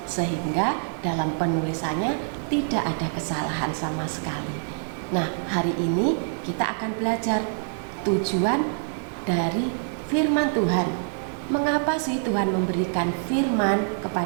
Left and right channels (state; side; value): silent; left; digital silence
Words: sehingga dalam penulisannya tidak ada kesalahan sama sekali. Nah, hari ini kita akan belajar tujuan dari firman Tuhan. Mengapa sih Tuhan memberikan firman